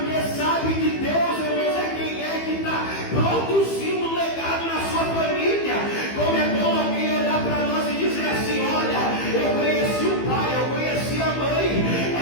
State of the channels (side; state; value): right; late; 15 ms